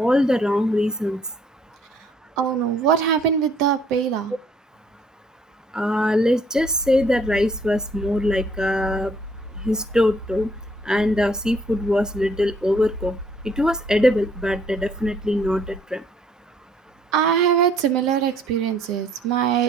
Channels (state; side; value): normal; both; correlation 0.64